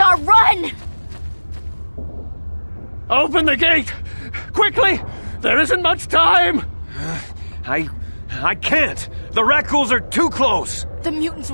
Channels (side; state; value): both; inverted; correlation -1.00